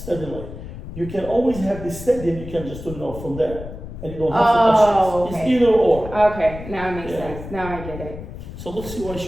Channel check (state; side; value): noise; left; rumble, 11 dB below the sound